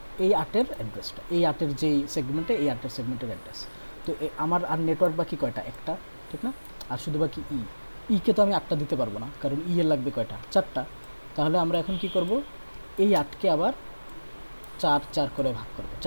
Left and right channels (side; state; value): both; inverted; correlation -1.00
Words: এই 8-এর অ্যাড্রেসটা, এই 8-এর যেই সেগমেন্টে, এই 8-এর সেগমেন্টের অ্যাড্রেস। তো আমার আর নেটওয়ার্ক বাকি কয়টা? একটা, ঠিক না? আর শুধু বাকি কে তো আমি 8টা দিতে পারবো না, কারণ এর লাগবে কয়টা? 4টা। তাহলে আমরা এখন কি করব? এই 8কে আবার 4 4 করে ভাগ করব।